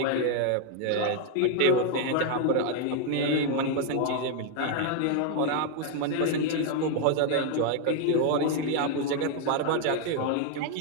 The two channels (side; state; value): both; different; correlation 0.00